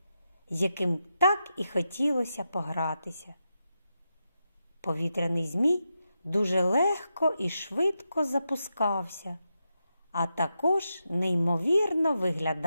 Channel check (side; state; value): both; inverted; correlation -0.87